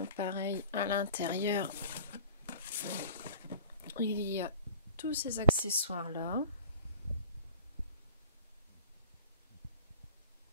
pareil, à l'intérieur, il y a tous ces accessoires là.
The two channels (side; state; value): both; inverted; correlation -0.41